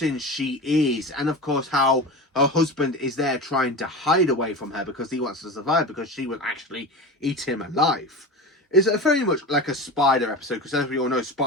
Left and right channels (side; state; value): both; normal; correlation 0.28